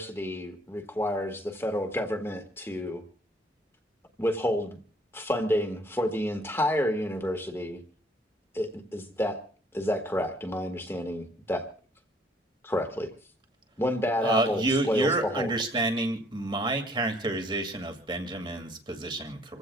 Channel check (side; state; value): both; normal; correlation 0.62